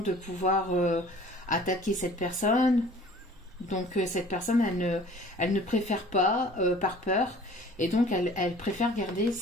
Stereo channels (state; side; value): normal; both; correlation 0.49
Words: pouvoir attaquer cette personne. Donc cette personne, elle ne préfère pas, par peur. Et donc elle préfère garder